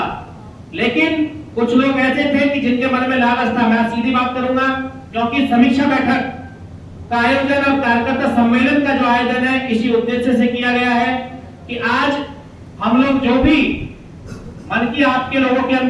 लेकिन कुछ लोग ऐसे थे कि जिनके मन में लालच था। मैं सीधी बात करूंगा, क्योंकि समीक्षा बैठक का आयोजन और कार्यकर्ता सम्मेलन का जो आयोजन है इसी उद्देश्य से किया गया है कि आज हम लोग जो भी मन की आपके लोगों के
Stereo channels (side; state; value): both; identical; correlation 1.00